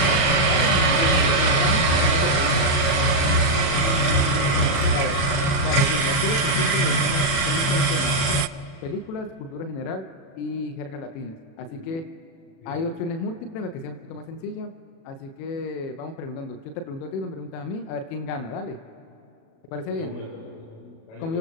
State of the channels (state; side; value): late; right; 36 ms